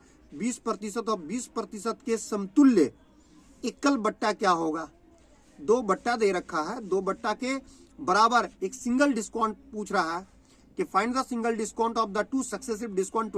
20% और 20% के समतुल्य एकल बट्टा क्या होगा? 2 बट्टा दे रखा है, 2 बट्टा के बराबर एक सिंगल डिस्काउंट पूछ रहा है कि find the single discount of the 2 successive discount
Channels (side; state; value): both; identical; correlation 1.00